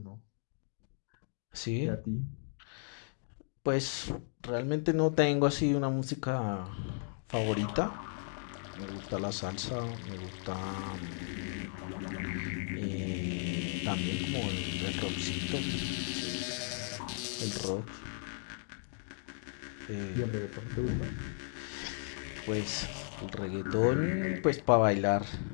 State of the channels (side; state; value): right; silent; digital silence